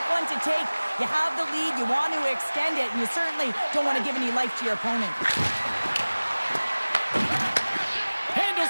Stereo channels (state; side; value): inverted; both; correlation -1.00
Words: one to take. You have the lead, you want to extend it, and you certainly don't want to give any life to your opponent.